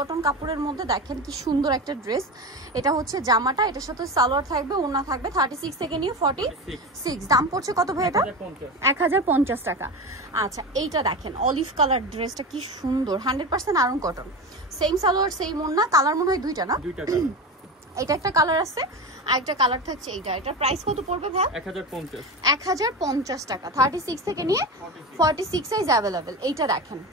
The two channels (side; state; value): both; normal; correlation 0.24